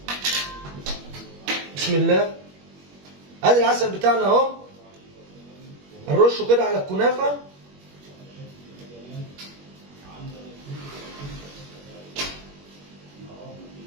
بسم الله، ادي العسل بتاعنا اهو، هنرشه كده على الكنافه.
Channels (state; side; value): late; left; 21 ms